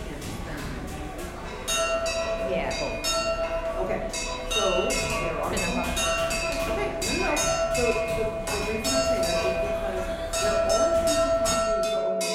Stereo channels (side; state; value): both; identical; correlation 1.00